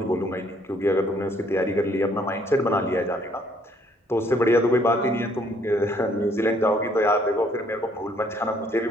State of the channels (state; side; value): normal; both; correlation 0.65